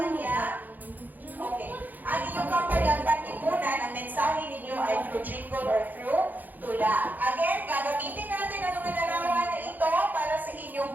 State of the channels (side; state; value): left; late; 0.084 ms